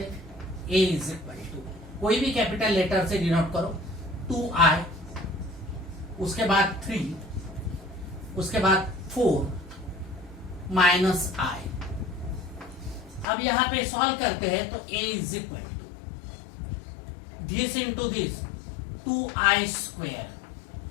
हैं, a इज इक्वल टू कोई भी कैपिटल लेटर से डिनोट करो, 2i, उसके बाद 3, उसके बाद 4 माइनस i। अब यहां पे सॉल्व करते हैं तो a is equal to this into this 2i square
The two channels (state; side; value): drops out; right; at 13.2 s